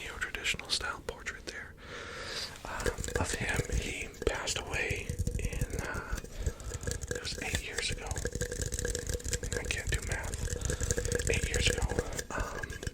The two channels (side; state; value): both; identical; correlation 1.00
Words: style portrait there, of him. He passed away it was 8 years ago. I can't do math. 8 years ago.